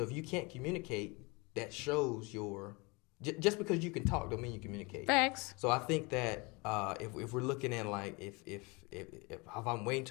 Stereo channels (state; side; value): quieter; right; 27.6 dB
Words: if you can't communicate, that shows your just because you can talk don't mean you communicate. Facts. So I think that if we're looking at like if I'm waiting